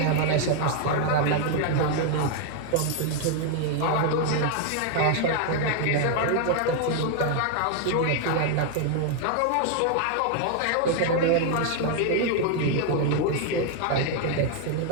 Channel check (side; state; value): both; different; correlation 0.00